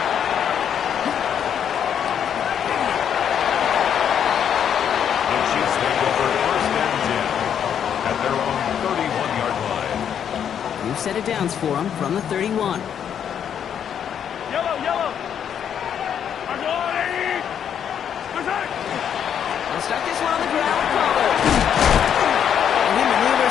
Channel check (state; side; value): quieter; right; 8.7 dB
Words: The Chiefs take over first and 10 at their own 31-yard line. New set of downs for him from the 31. Yellow, yellow. They'll start this one on the ground with Pollard. And he